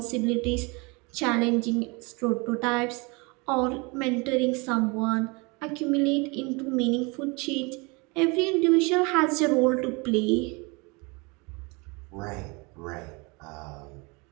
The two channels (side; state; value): left; quieter; 28.4 dB